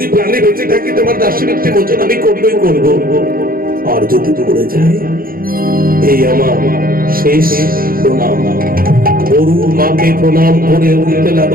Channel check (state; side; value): late; left; 0.42 ms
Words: প্রাণে বেঁচে থাকি তোমার দাসবৃত্তি মোচন আমি করবই করবো, আর যদি মরে যাই এই আমার শেষ প্রণাম। গরু মাকে প্রণাম করে উঠতে